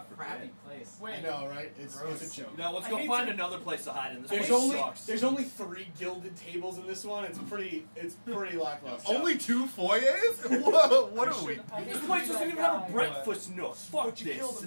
Crappy forbid. place. I know, right? It's Gross. a joke. You know, let's I go hate find to- another place to hide in. This There's place only sucks. there's only 3 gilded tables in this one. It's pretty lackluster. Only 2 foyers? What are we? I hate This to place be doesn't that even have guy, a breakfast nook. Fuck But you this. killed him,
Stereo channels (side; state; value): both; inverted; correlation -1.00